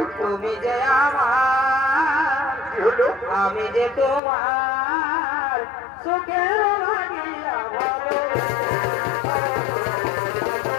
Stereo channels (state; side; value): drops out; right; at 4.2 s